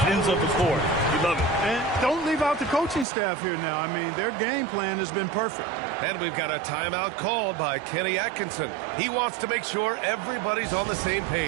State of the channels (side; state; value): left; drops out; at 3.1 s